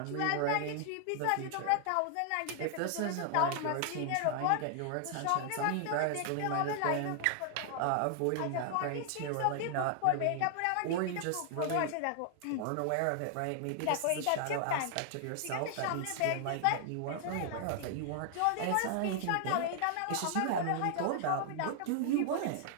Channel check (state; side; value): different; both; correlation 0.00